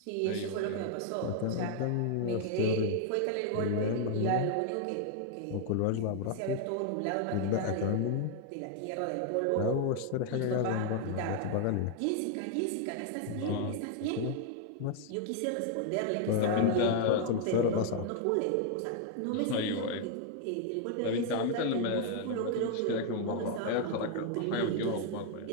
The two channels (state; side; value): different; both; correlation 0.00